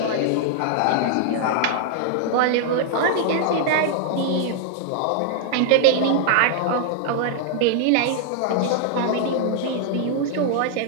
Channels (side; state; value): both; different; correlation -0.01